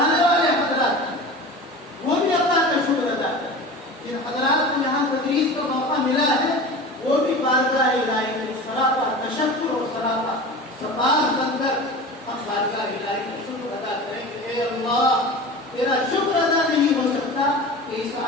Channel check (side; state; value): both; normal; correlation 0.33